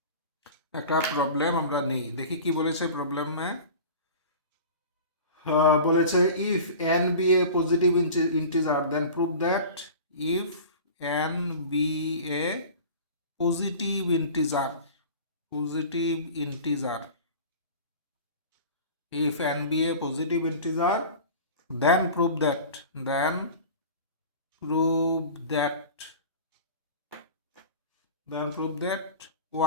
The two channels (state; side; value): inverted; both; correlation -0.38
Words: একটা প্রবলেম আমরা নিই, দেখি কি বলেছে প্রবলেমে। বলেছে if n be a positive integer then prove that if n be a positive integer, positive integer, if n be a positive integer then prove that